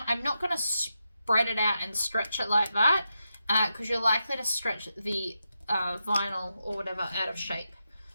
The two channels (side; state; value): both; inverted; correlation -0.86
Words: I'm not going to spread it out and stretch it like that, because you're likely to stretch the vinyl or whatever out of shape.